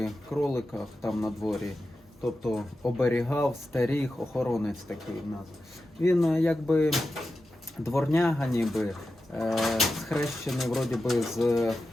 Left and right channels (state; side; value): normal; both; correlation 0.92